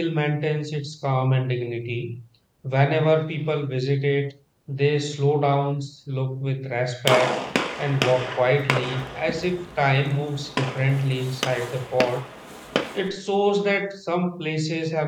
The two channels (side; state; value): both; identical; correlation 1.00